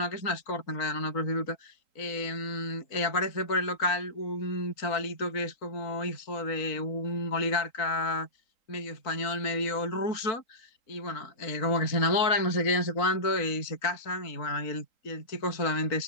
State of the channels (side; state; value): right; late; 3.9 ms